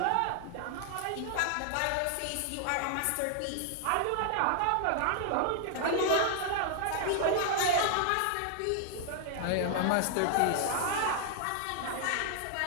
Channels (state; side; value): different; both; correlation 0.00